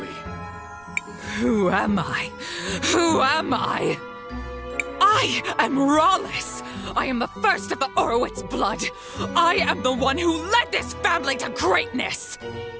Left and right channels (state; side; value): noise; right; rumble, 29 dB below the sound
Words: Who am I? Who am I? I am Rallis! I am the first of the Orowitz blood! I am the one who led this family to greatness!